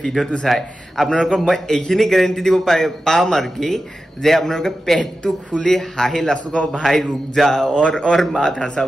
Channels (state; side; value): normal; both; correlation 0.92